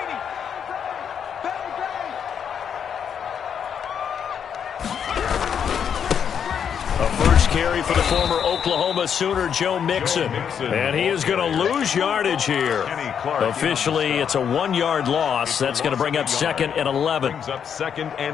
Carry for the former Oklahoma Sooner, Joe Mixon. And he is going to lose yardage here. Officially, it's a 1-yard loss. That's going to bring up 2nd and 11. Brings up 2nd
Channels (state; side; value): quieter; right; 7.8 dB